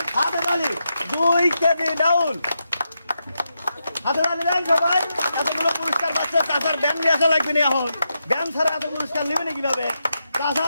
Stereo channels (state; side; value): inverted; both; correlation -0.85